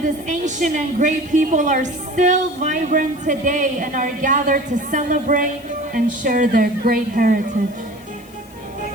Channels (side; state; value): left; noise; hiss, 25 dB below the sound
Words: this ancient and great people are still vibrant today and are gathered to celebrate and share their great heritage.